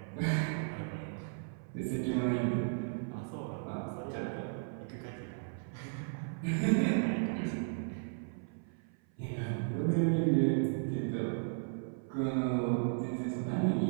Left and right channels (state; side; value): silent; left; 54 dB below the other